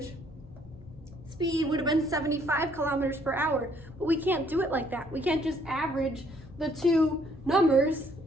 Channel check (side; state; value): both; normal; correlation 0.66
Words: speed would have been 75 kilometers per hour. But we can't do it like that. We can't just average the 2 numbers